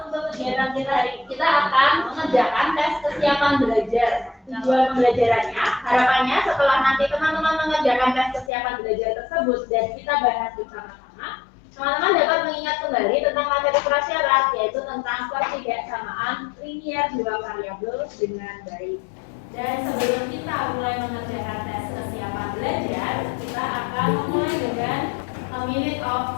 Untuk kegiatan kita hari ini, kita akan mengerjakan tes kesiapan belajar. Tujuan pembelajarannya, harapannya setelah nanti teman-teman mengerjakan tes kesiapan belajar tersebut dan kita bahas bersama-sama, teman-teman dapat mengingat kembali tentang materi prasyarat, yaitu tentang pertidaksamaan linear dua variabel dengan baik. Dan sebelum kita mulai mengerjakan tes kesiapan belajar, kita akan memulai dengan a minute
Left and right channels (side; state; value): right; drops out; at 8.5 s